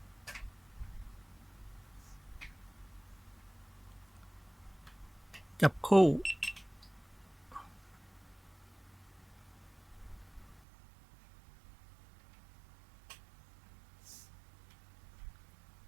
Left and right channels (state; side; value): drops out; left; at 10.6 s